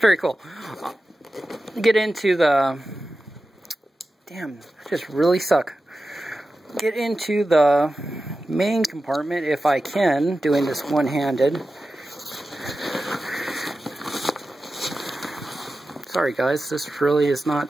cool. Get into the... Damn, I just really suck. Get into the main compartment if I can, doing this one-handed. Sorry guys, this really is not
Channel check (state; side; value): normal; both; correlation 0.93